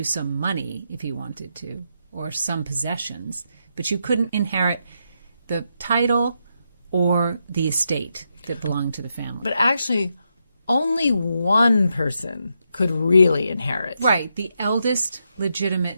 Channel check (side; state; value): both; inverted; correlation -0.82